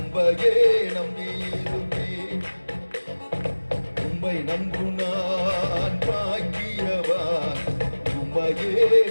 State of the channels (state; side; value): inverted; both; correlation -1.00